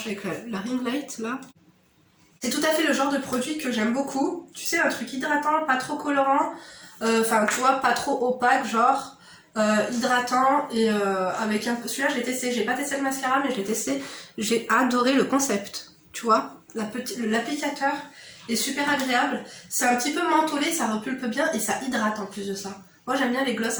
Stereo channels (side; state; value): both; identical; correlation 1.00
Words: avec la ring light là. C'est tout à fait le genre de produit que j'aime beaucoup. Tu sais, un truc hydratant, pas trop colorant. Enfin, tu vois, pas trop opaque, genre hydratant. Et avec un peu... Celui-là, je l'ai testé. J'ai pas testé le mascara, mais je l'ai testé. J'ai adoré le concept. Tu vois, l'applicateur est super agréable. C'est un petit peu mentholé, ça repulpe bien et ça hydrate en plus de ça. Moi, j'aime bien les gloss